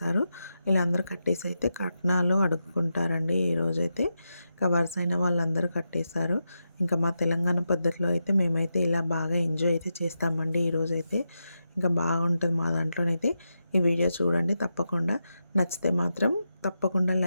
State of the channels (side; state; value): both; inverted; correlation -0.88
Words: ఇలా అందరూ కట్టేసి అయితే కట్నాలు అడుక్కుంటారండి. ఈరోజైతే ఇంకా వరుస అయిన వాళ్ళందరూ కట్టేశారు. ఇంకా మా తెలంగాణ పద్ధతిలో అయితే మేమైతే ఇలా బాగా ఎంజాయ్ అయితే చేస్తామండి. ఈరోజైతే ఇంకా బాగుంటుంది మా దాంట్లోనైతే. ఈ వీడియో చూడండి తప్పకుండా. నచ్చితే మాత్రం తప్పకుండా